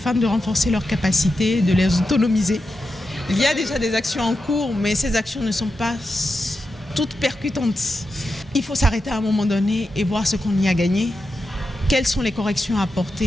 de renforcer leurs capacités, de les autonomiser. Il y a déjà des actions en cours, mais ces actions ne sont pas toutes percutantes. Il faut s'arrêter à un moment donné et voir ce qu'on y a gagné, quelles sont les corrections à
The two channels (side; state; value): both; normal; correlation 0.89